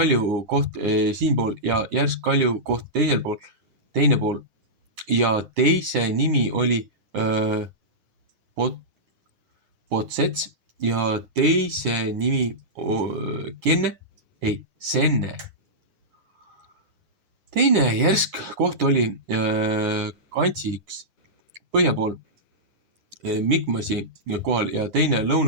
koht siinpool ja järsk kalju koht teine pool. Ja teise nimi oli Potsets ja teise nimi Senne. Teine järsk koht oli Kantsiks põhja pool Mikmasi kohal ja teine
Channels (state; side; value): late; left; 9.7 ms